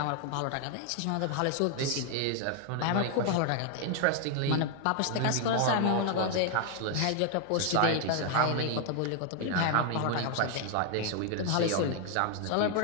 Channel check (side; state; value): both; different; correlation 0.00